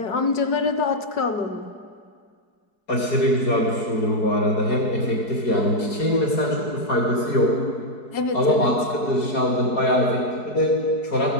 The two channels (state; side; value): late; right; 4.7 ms